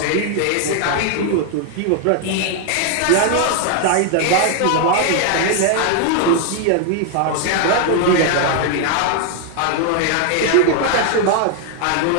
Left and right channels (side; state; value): both; different; correlation 0.00